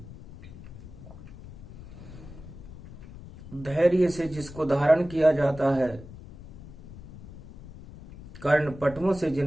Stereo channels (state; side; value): noise; left; rumble, 15 dB below the sound